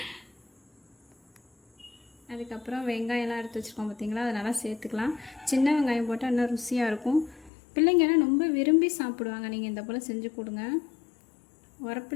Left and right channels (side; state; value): right; drops out; at 7.5 s